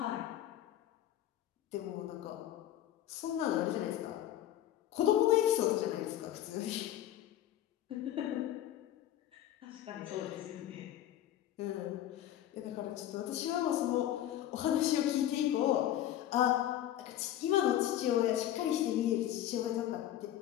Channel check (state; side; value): quieter; right; 12.3 dB